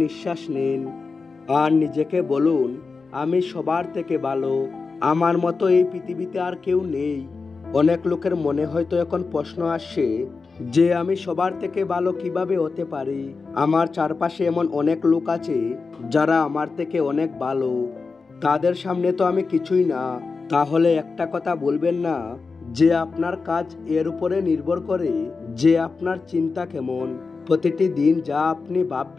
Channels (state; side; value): quieter; right; 4.5 dB